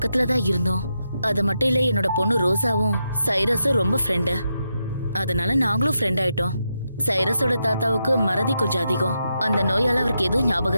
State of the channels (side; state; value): both; inverted; correlation -0.85